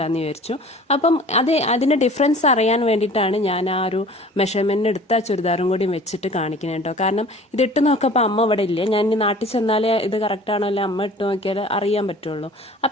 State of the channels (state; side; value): normal; both; correlation 0.46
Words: വിചാരിച്ചു. അപ്പം അതിൻ്റെ ഡിഫറൻസ് അറിയാൻ വേണ്ടിയിട്ടാണ് ഞാൻ ആ ഒരു മെഷർമെൻറ്റ് എടുത്ത ചുരിദാറും കൂടി വെച്ചിട്ട് കാണിക്കുന്നത് കേട്ടോ. കാരണം ഇതിട്ട് നോക്കപ്പോൾ അമ്മ ഇവിടെ ഇല്ല. ഞാൻ ഇനി നാട്ടിൽ ചെന്നാലേ ഇത് കറക്റ്റാണോ അല്ലെ അമ്മ ഇട്ട് നോക്കിയാൽ അറിയാൻ പറ്റുള്ളൂ.